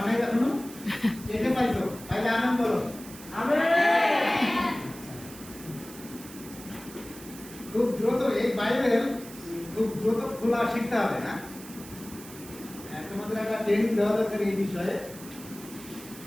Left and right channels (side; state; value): right; noise; hiss, 16 dB below the sound